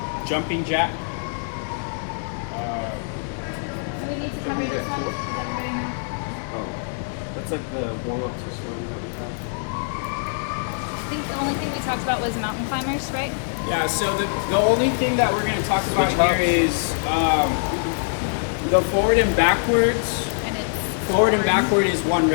jumping jack. So we need to cover Jumping jack yourself. Oh, that's like the warm up to swing that we have. I think the only thing we talked about was mountain climbers, right? Yeah, so the only thing that we're going to talk about here is the forward and backwards. And it's Forward and backward is 1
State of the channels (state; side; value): silent; right; 63 dB below the other